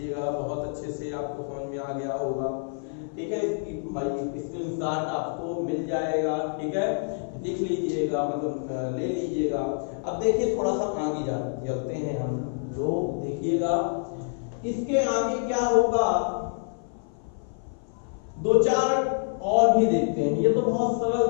बहुत अच्छे से, आपको समझ में आ गया होगा, ठीक है। इसकी स्क्रीनशॉट आपको मिल जाएगा, ठीक है, देख लीजिएगा, मतलब ले लीजिएगा। अब देखिए थोड़ा सा आगे चलते हैं हम लोग, देखिएगा इसके आगे क्या होगा, दो चार और भी देखते हैं। ये तो बहुत सरल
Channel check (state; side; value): silent; right; 55 dB below the other